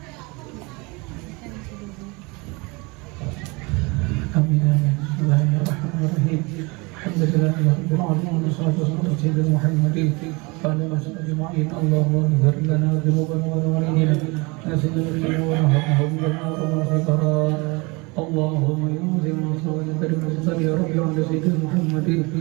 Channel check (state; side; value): quieter; left; 26.8 dB